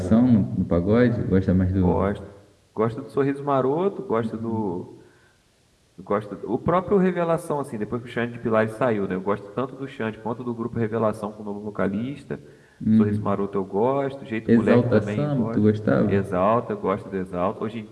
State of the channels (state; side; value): identical; both; correlation 1.00